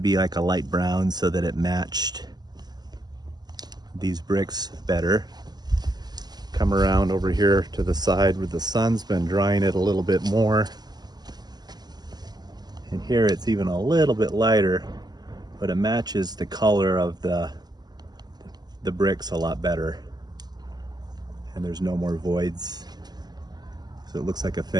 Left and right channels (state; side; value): late; left; 0.20 ms